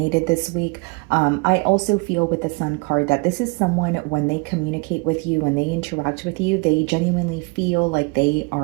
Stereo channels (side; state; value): left; quieter; 28.9 dB